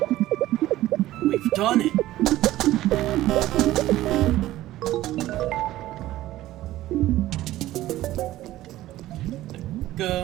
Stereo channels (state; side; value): quieter; left; 15.3 dB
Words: We've done it.